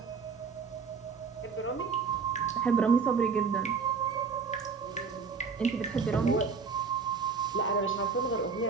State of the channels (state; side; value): quieter; left; 5.3 dB